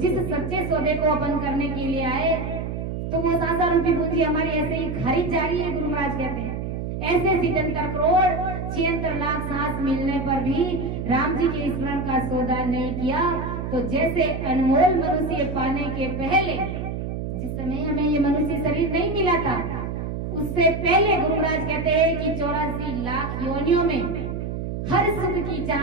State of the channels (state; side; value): noise; right; hum, 4 dB below the sound